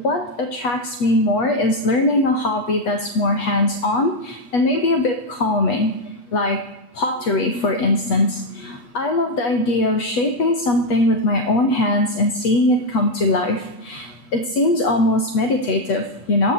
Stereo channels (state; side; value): late; right; 8.2 ms